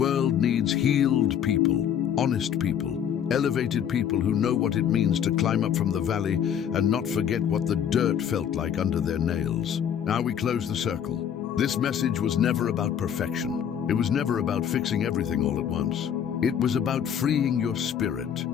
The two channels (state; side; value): quieter; right; 8.8 dB